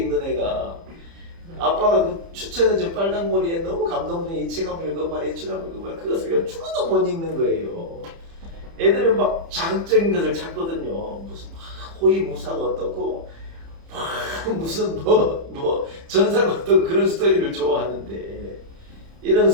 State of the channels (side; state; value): left; late; 30 ms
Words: 애가, 아빠가 그 추천해준 빨강머리에 너무 감동적인 이 책 한번 읽어봐라, 이 책 한번 읽어봐라, 그것을 죽어도 못 읽는 거예요. 애들은 막 자극적인 것을 찾거든요. 무슨 호위무사가 어떻고 무슨 뭐 전사가 어떻고 그런 스토리를 좋아하는데, 이런